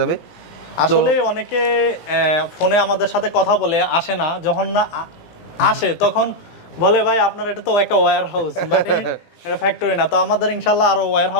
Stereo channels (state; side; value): late; right; 18 ms